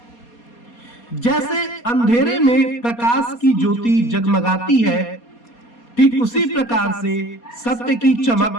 जैसे अंधेरे में प्रकाश की ज्योति जगमगाती है, ठीक उसी प्रकार से सत्य की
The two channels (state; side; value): late; right; 4.2 ms